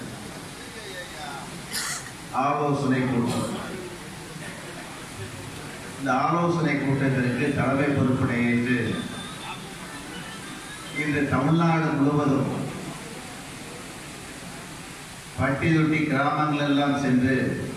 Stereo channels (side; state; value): both; identical; correlation 1.00